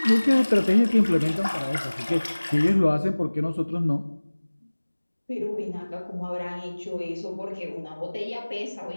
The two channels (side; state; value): both; inverted; correlation -1.00